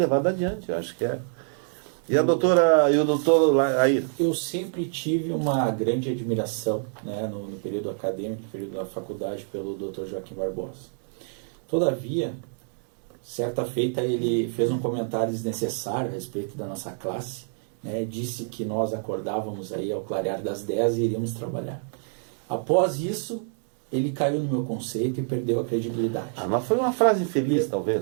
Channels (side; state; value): left; silent; digital silence